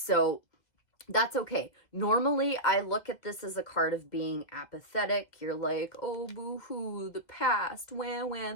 that's okay. Normally, I look at this as a card of being apathetic. You're like, oh, boo-hoo, the past, wah,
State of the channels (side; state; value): right; late; 1.9 ms